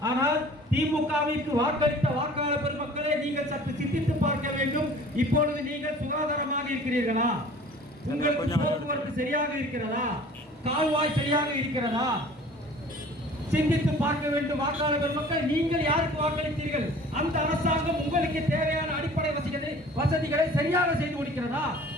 ஆனால் திமுகவிற்கு வாக்களித்த வாக்காளர் பெருமக்களே, நீங்கள் சற்று சிந்தித்து பார்க்க வேண்டும். இப்பொழுது நீங்கள் சுகாதாரமாக இருக்கிறீர்களா? உங்களுக்கு போக்குவரத்து சரியாக இருக்கிறதா? கால்வாய் சரியாக இருக்கிறதா? சிந்தித்து பார்க்க வேண்டும். வாக்காளர் பெருமக்கள், நீங்கள் யாருக்கு வாக்களித்தீர்கள்? அந்த அரசாங்கம் உங்களுக்கு தேவையான அடிப்படை வசதிகளை சரியாக செய்து கொடுக்கிறதா?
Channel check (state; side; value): normal; both; correlation 0.47